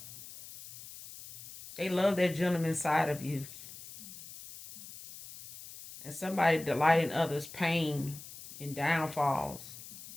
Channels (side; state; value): left; noise; hiss, 15 dB below the sound